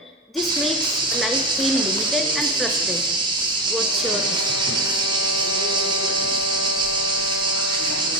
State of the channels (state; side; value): normal; both; correlation 0.17